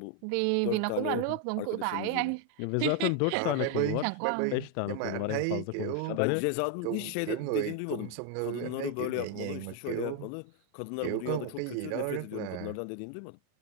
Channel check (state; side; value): different; both; correlation 0.01